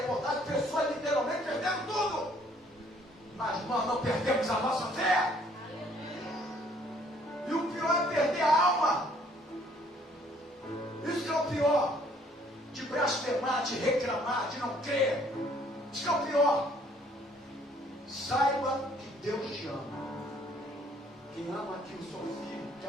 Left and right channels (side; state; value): both; normal; correlation 0.62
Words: a pessoa literalmente perdeu tudo. Mas nós não perdemos a nossa fé. E o pior é perder a alma. Isso que é o pior. De blasfemar, de reclamar, de não crer. Isso que é o pior. Saiba que Deus te ama. Quem ama aqui o seu filho